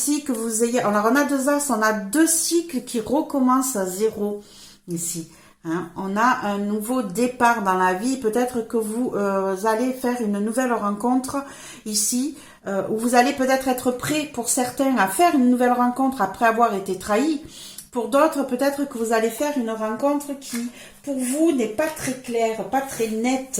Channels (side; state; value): both; identical; correlation 1.00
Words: que vous ayez... Alors, on a 2 as, on a 2 cycles qui recommencent à zéro ici. Hein. On a un nouveau départ dans la vie. Peut-être que vous allez faire une nouvelle rencontre ici, où vous allez peut-être être prêt pour certains à faire une nouvelle rencontre après avoir été trahi. Pour d'autres, peut-être que vous allez faire une rencontre qui, pour vous, n'est pas très claire, pas très nette.